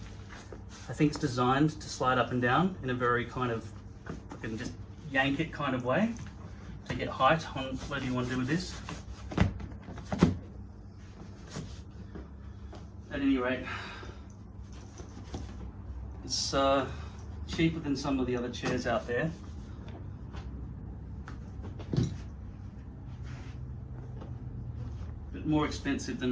I think it's designed to slide up and down in a very kind of, you can just yank it kind of way to get height on whatever you want to do with this. At any rate, it's cheaper than some of the other chairs out there. But more expensive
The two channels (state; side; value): identical; both; correlation 1.00